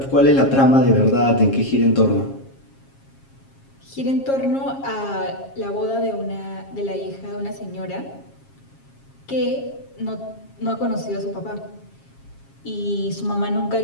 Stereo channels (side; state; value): right; late; 7.4 ms